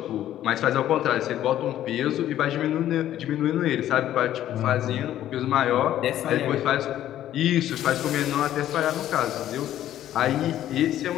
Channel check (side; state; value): right; quieter; 12.2 dB